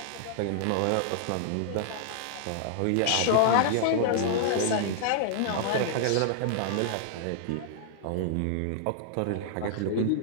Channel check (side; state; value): both; different; correlation -0.01